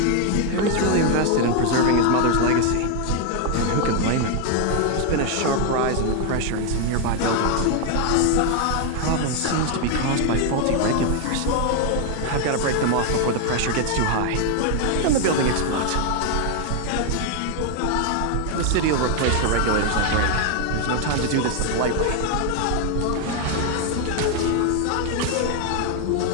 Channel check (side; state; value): both; different; correlation 0.01